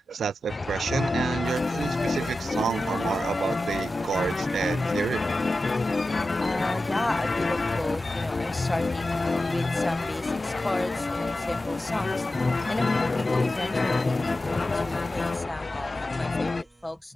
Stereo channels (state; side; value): normal; both; correlation 0.93